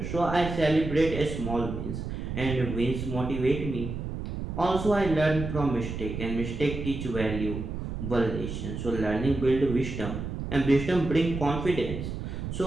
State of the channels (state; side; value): noise; right; rumble, 5 dB below the sound